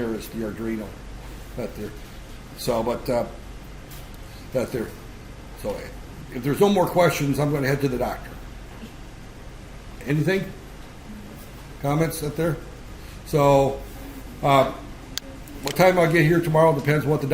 is the Arduino. So if there's no more questions, I'm going to head to the doctor. Anything? Comments up there? So, what time I'll get here tomorrow depends on what the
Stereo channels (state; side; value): identical; both; correlation 1.00